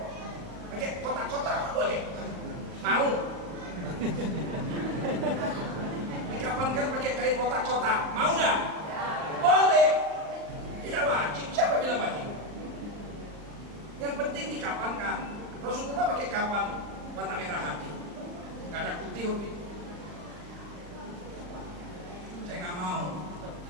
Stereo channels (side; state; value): left; late; 39 ms